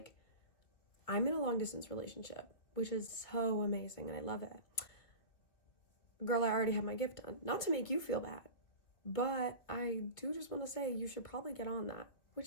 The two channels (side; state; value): right; late; 2.6 ms